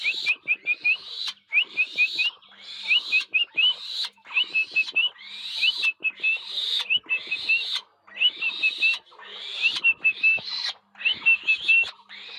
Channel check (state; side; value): identical; both; correlation 1.00